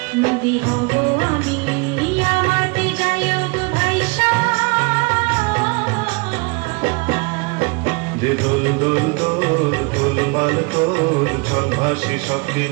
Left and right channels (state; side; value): quieter; left; 29.0 dB